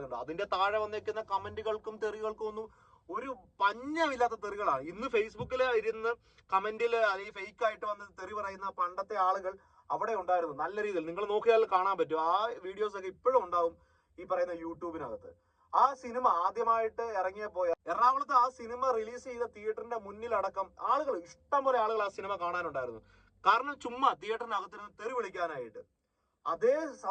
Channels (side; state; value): both; identical; correlation 1.00